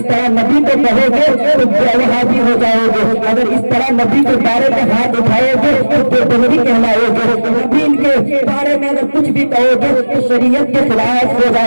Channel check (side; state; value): both; inverted; correlation -1.00